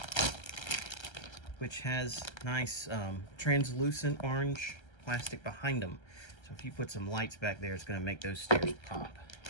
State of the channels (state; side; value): late; right; 1.3 ms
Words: Which has nice translucent orange plastic behind them. So if you put some lights back there, it's going to make those stairs pop.